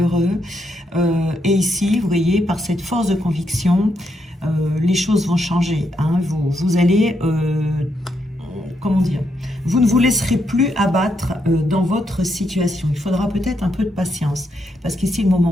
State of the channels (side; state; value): both; normal; correlation 0.79